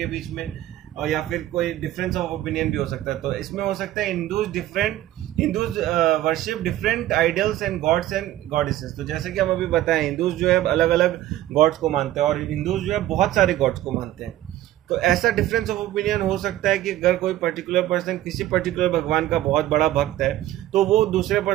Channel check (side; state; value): left; quieter; 14.1 dB